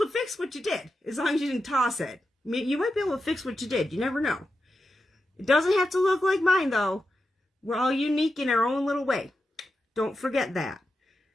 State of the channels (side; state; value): both; normal; correlation 0.89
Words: to fix what you did, as long as you didn't toss it. You might be able to fix what you did. You never know. It doesn't have to look like mine, though. We're all unique in our own little way. Don't forget that.